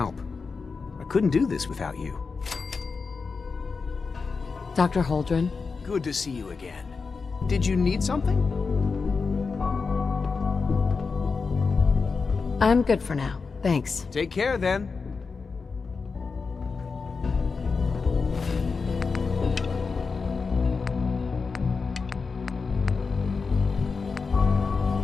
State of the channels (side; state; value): right; quieter; 4.8 dB